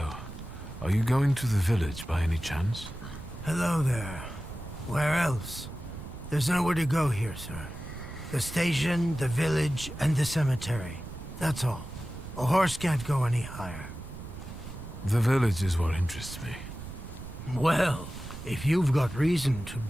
Are you going to the village by any chance? Hello there. Where else? There's nowhere to go here, sir. The station, the village, and the cemetery. That's all. A horse can't go any higher. The village is what interests me. Well, if you've got reason to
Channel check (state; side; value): noise; right; rumble, 12 dB below the sound